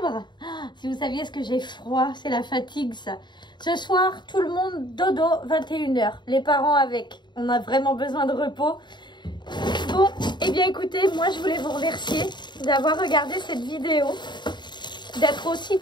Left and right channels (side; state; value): right; late; 0.22 ms